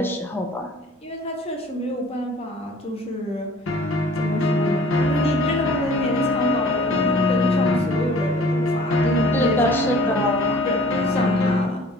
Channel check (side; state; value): both; normal; correlation 0.49